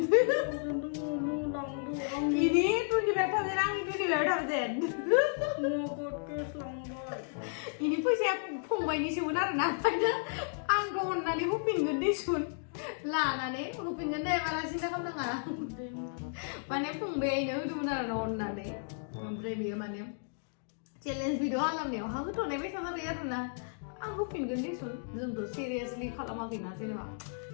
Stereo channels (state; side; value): silent; right; digital silence